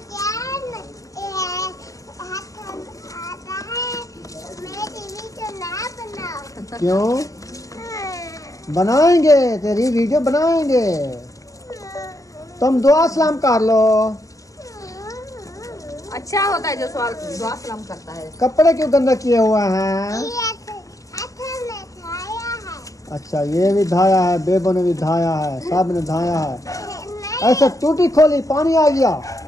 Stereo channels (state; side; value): late; right; 0.16 ms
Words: क्यों बनाएंगे? तेरी वीडियो बनाएंगे। तुम दुआ सलाम कर लो। अच्छा होता है जो सवाल दुआ सलाम करता है। कपड़े क्यों गंदा किए हुए हैं? अच्छा, ये भी धाया है, बेबो ने भी धाया है, सब ने धाया है। ऐसे टूटी खोली पानी आ गया।